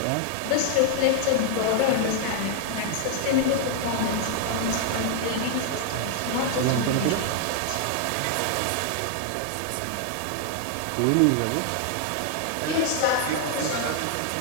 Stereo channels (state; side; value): different; both; correlation 0.00